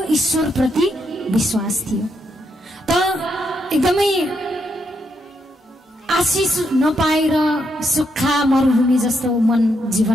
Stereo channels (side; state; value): both; normal; correlation 0.79